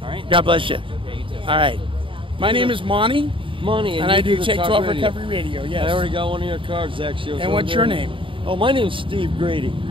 All right. God bless you. Yeah, you too. All right. My name is Monty. And I do the Take Talk 12 Radio. Recovery Radio, yes. I already got one of your cards, actually. And what's your name? Oh, my name's Steve Grady.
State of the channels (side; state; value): left; late; 0.25 ms